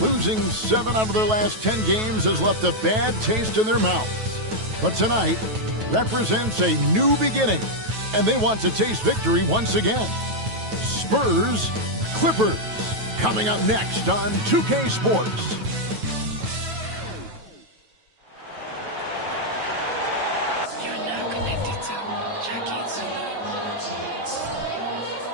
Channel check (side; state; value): left; late; 9.2 ms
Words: 7 out of their last 10 games, has left a bad taste in their mouths. But tonight represents a new beginning, and they want to taste victory once again. Spurs, Clippers, coming up next on 2K Sports.